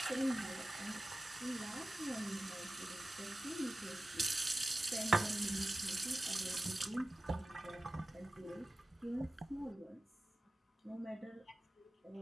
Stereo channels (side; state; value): both; normal; correlation 0.95